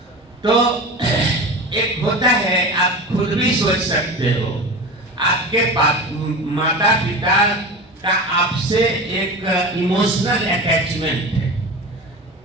तो एक होता है, आप खुद भी सोच सकते हो, आपके माता पिता का आपसे एक इमोशनल अटैचमेंट है।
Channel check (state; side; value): normal; both; correlation 0.30